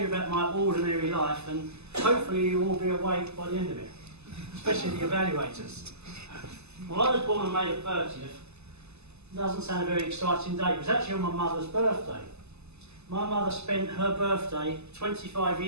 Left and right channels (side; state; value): left; late; 0.80 ms